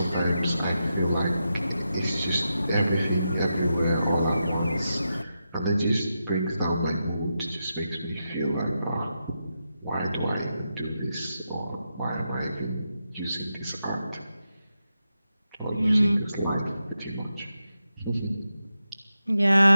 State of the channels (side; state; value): both; inverted; correlation -0.88